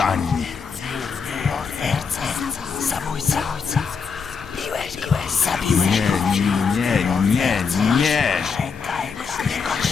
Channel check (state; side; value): quieter; right; 5.7 dB